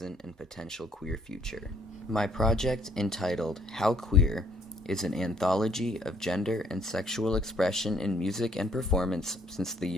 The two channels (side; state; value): both; normal; correlation 0.64